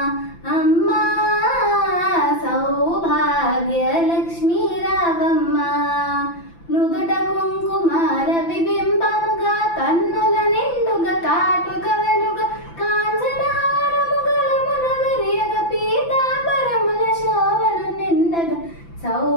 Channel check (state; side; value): late; right; 5.9 ms